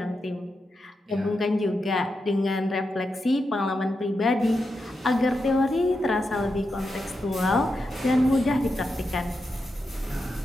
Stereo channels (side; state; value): both; normal; correlation 0.87